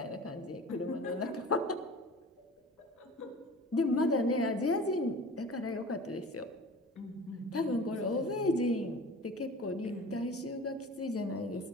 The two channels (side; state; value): both; normal; correlation 0.39